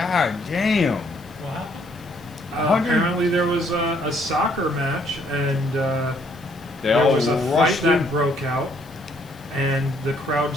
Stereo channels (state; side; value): noise; left; hiss, 27 dB below the sound